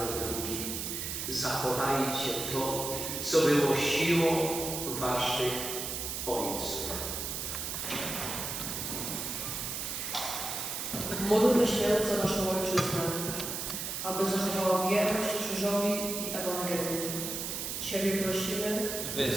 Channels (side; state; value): right; noise; hiss, 4 dB below the sound